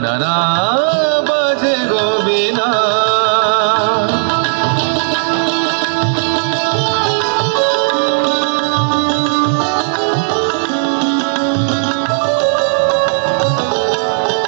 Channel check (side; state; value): left; silent; digital silence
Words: না না বাজে গো বিনা